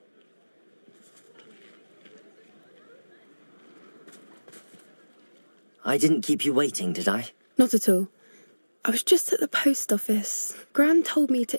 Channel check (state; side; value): inverted; both; correlation -1.00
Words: I didn't keep you waiting, did I? Not at all. I was just at the post office. Gran told me